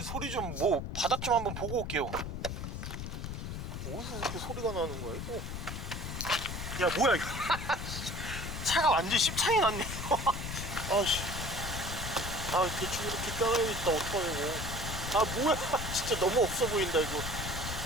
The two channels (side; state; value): left; noise; rumble, 5 dB below the sound